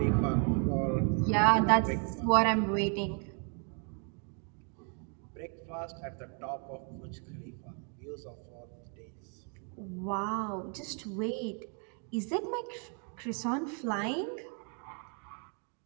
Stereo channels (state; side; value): quieter; left; 39.9 dB